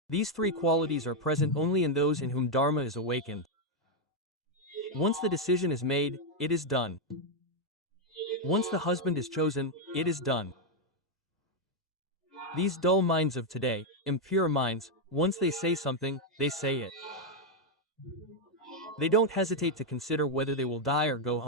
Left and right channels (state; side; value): normal; both; correlation 0.01